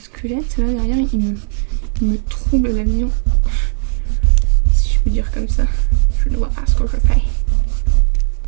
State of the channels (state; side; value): silent; left; digital silence